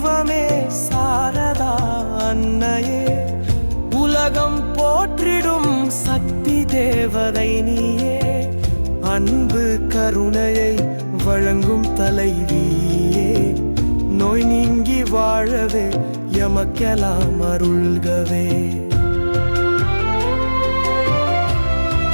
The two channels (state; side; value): inverted; both; correlation -1.00